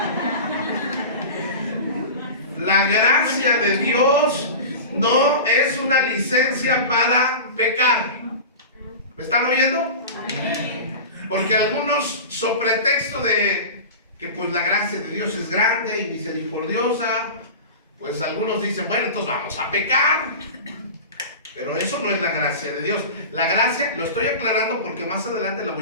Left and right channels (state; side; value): inverted; both; correlation -0.31